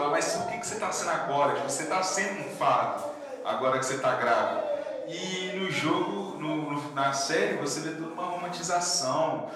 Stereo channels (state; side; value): identical; both; correlation 1.00